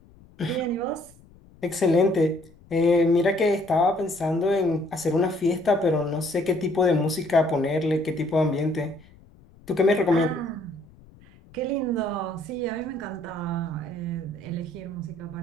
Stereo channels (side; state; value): left; noise; rumble, 26 dB below the sound